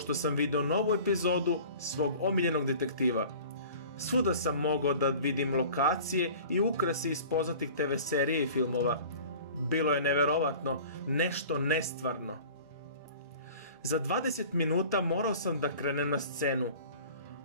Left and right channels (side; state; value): both; inverted; correlation -0.43